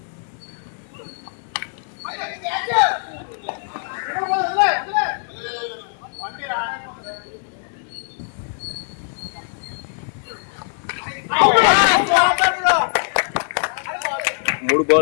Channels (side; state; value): right; silent; 61 dB below the other